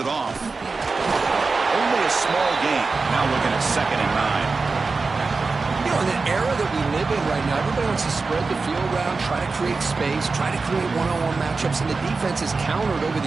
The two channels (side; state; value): left; quieter; 4.1 dB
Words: off. Only a small gain. Now looking at 2nd and 9. You know, in the era that we live in right now, everybody wants to spread the field around, try to create space, try to create one-on-one matchups, and the defense is countered over